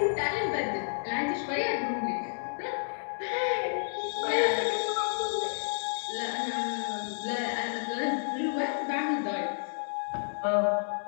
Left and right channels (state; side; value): silent; right; digital silence